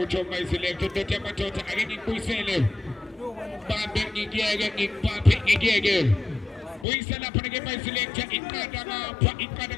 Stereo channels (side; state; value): right; drops out; at 6.9 s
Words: mayiselector ndothi amadoda ake ngikubuyisele bambe ngikiyeke ngikupaphe ngikiyeke buyisa lapha ke mayiselector iqanda ngapha iqanda